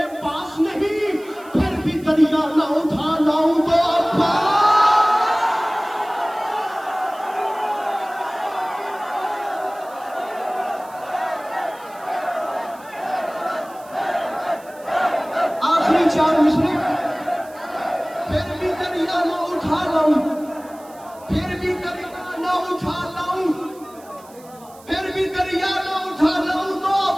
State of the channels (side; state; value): right; noise; hiss, 24 dB below the sound